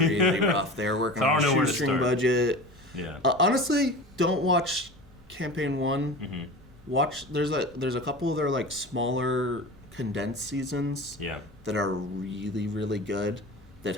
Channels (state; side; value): normal; both; correlation 0.33